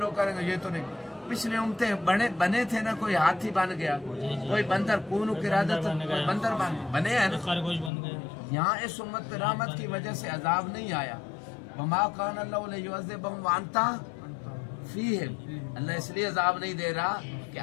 کریں گے یہ تو نہیں، پچھلے امتیں بنے تھے نا، کوئی ہاتھی بن گیا، کوئی بندر، کون قرادت کوئی بندر بنے ہیں نا. یہاں اس امت پہ رحمت کی وجہ سے عذاب نہیں آیا. وما کان اللہ لیعذبہم وانت فیہم، اللہ اس لیے عذاب نہیں دے رہا کہ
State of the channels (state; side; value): drops out; right; at 7.9 s